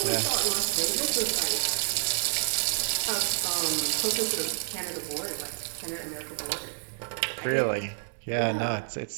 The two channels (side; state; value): left; silent; digital silence